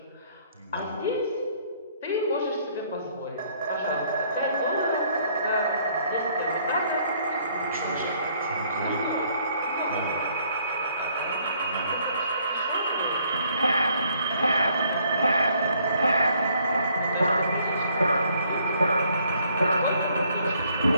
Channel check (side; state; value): both; inverted; correlation -0.65